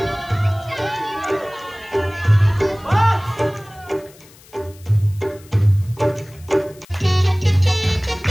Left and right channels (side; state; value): left; noise; hiss, 25 dB below the sound